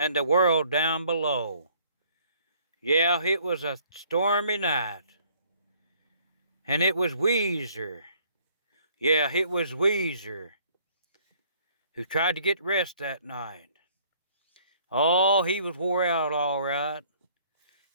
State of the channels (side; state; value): both; inverted; correlation -0.60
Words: the world down below. Yeah, it was a stormy night. And it was Wezzer. Yeah, it was Wezzer who tried to get rest that night. Oh, he was wore out all right.